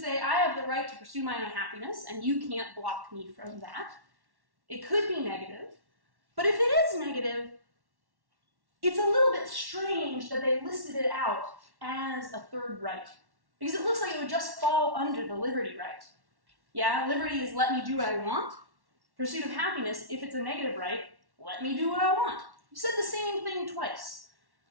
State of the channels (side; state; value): left; late; 1.1 ms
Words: I have the right to pursue my own happiness, and you can't block me from that. It could be negative. But if it is negative, it's a little bit strange that they listed it out as a third right. Because it looks like it would just fall under the liberty right. Yeah, liberty is let me do what I want. Pursuit of happiness, if it's a negative right, let me do what I want. You said the same thing twice.